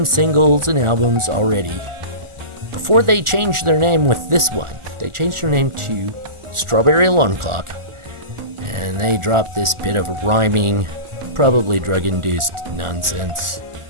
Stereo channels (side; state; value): left; late; 1.4 ms